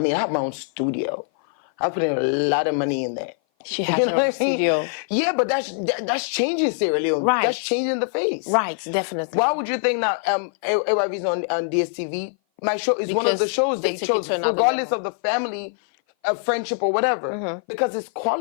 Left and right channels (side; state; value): right; silent; 57 dB below the other